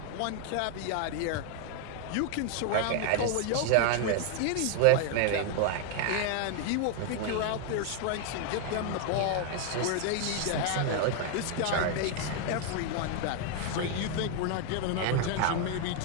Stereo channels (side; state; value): both; different; correlation 0.00